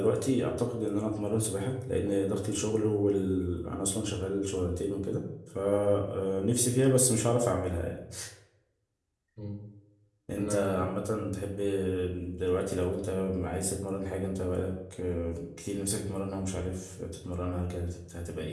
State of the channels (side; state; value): both; identical; correlation 1.00